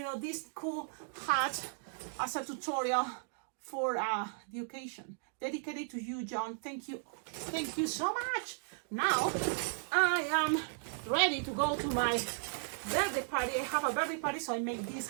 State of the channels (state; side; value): silent; left; digital silence